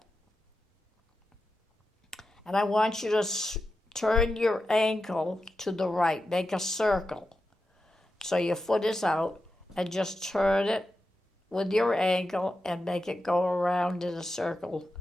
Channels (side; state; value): both; normal; correlation 0.90